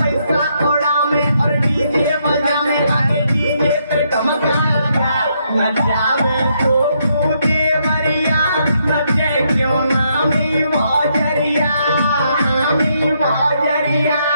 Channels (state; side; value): inverted; both; correlation -0.75